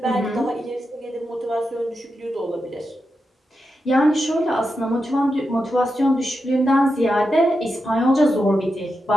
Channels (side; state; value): both; normal; correlation 0.88